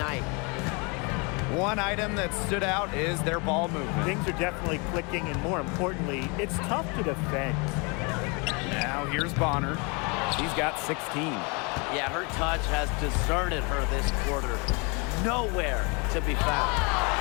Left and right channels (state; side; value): quieter; right; 31.1 dB